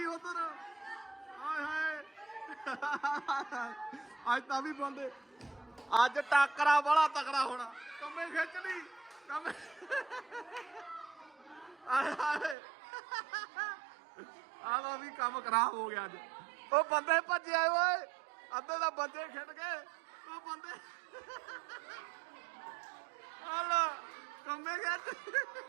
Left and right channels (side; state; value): left; drops out; at 12.6 s